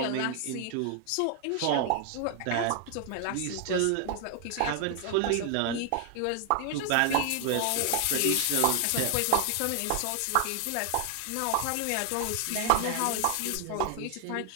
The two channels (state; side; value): different; both; correlation 0.00